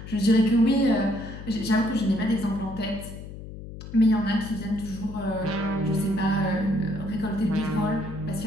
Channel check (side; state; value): left; noise; hum, 12 dB below the sound